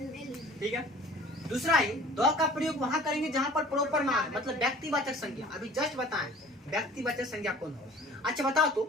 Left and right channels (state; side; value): normal; both; correlation 0.47